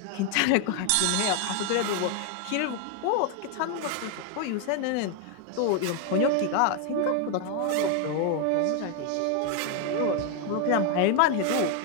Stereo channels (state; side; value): different; both; correlation 0.01